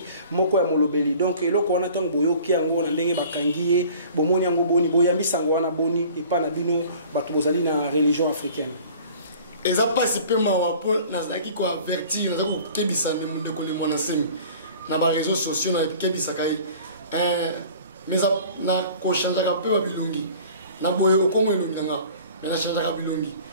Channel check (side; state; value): both; inverted; correlation -0.47